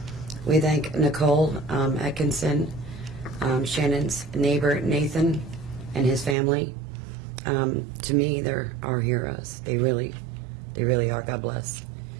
We thank Nicole Atkinson, Shannon's neighbor Nathan, and his family. To me, they're our heroes. They really are. God bless.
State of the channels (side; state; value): left; drops out; at 6.4 s